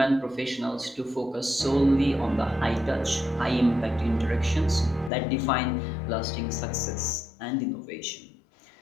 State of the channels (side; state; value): right; drops out; at 5.1 s